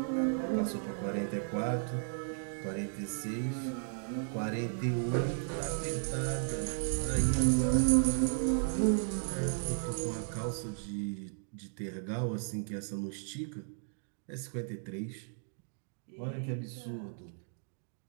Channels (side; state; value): left; silent; digital silence